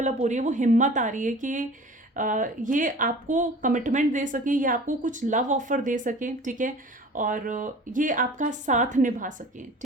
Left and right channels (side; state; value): both; normal; correlation 0.43